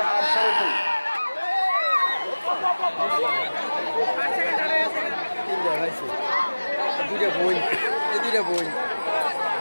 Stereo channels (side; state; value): both; inverted; correlation -1.00